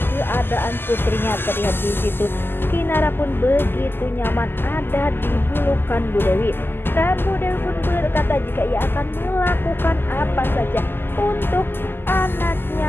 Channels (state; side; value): late; right; 0.10 ms